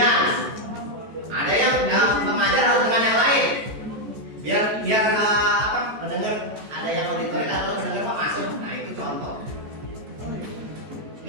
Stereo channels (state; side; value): late; left; 14 ms